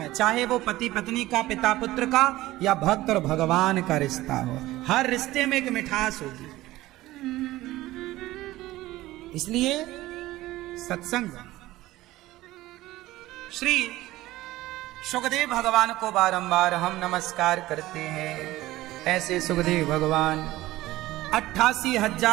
चाहे वो पति पत्नी का, पिता पुत्र का, या भक्त और भगवान का रिश्ता हो, हर रिश्ते में एक मिठास होगी। इसलिए सत्संग। श्री सुखदेव भगवान को बारंबार हम नमस्कार करते हैं। ऐसे सुखदेव भगवान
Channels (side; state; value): left; quieter; 17.0 dB